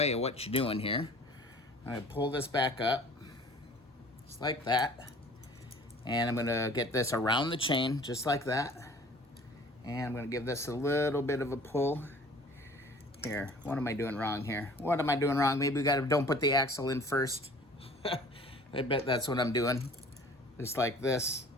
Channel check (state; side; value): normal; both; correlation 0.49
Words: of what you're doing here. I'm gonna pull this back up, just like that. And I'm gonna get this around the chain, just like that. And I'm gonna give this a little bit of a pull. Here, what am I doing wrong here? What am I doing wrong? Maybe we don't put the axle in first. I bet that's what I'm doing. Just like this.